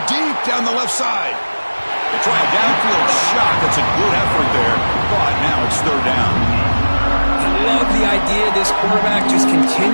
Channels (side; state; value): both; inverted; correlation -1.00